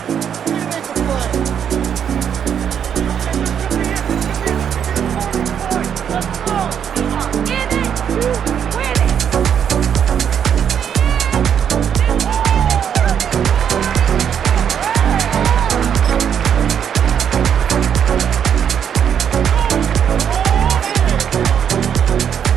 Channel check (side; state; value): left; quieter; 8.4 dB